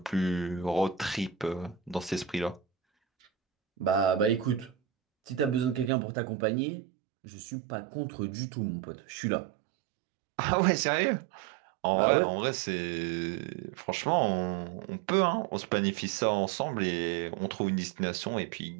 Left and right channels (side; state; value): left; drops out; at 5.9 s